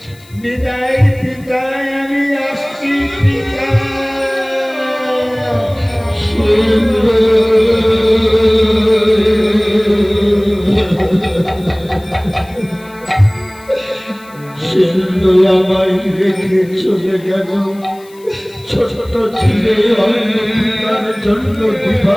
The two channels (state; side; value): noise; left; hiss, 26 dB below the sound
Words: বিদায় পিতা, আমি আসছি পিতা। সিন্ধু আমায় রেখে চলে গেল, ছোট ছেলে অন্য পিতার জন্য